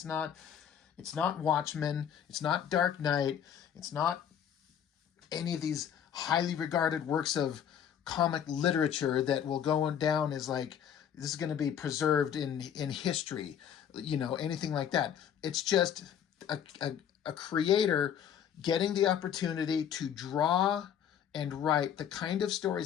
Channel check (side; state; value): right; quieter; 9.0 dB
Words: not. It's not Watchmen. It's not Dark Knight. It's not any of these highly regarded works of comic literature that will go down as like, this is going to be preserved in history, anything like that. It's just a creator getting the opportunity to draw and write the kind of